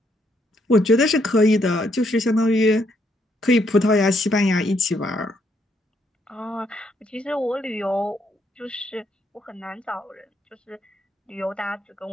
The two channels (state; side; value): normal; both; correlation 0.73